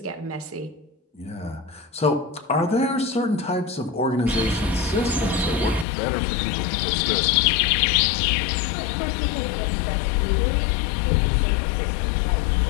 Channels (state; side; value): drops out; right; at 5.9 s